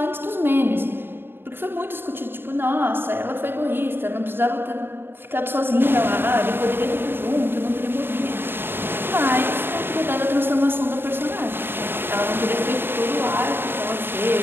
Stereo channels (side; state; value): left; late; 0.10 ms